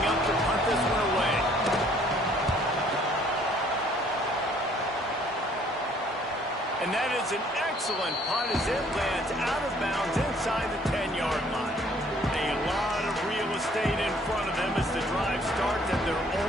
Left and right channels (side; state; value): both; normal; correlation 0.60